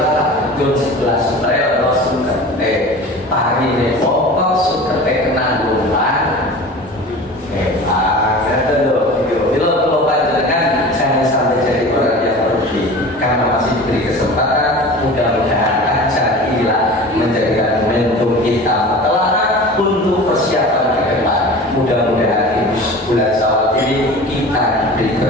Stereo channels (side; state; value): both; normal; correlation 0.37